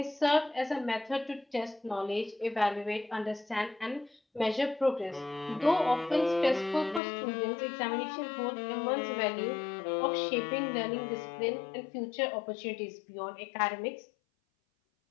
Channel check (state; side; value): drops out; right; at 7.0 s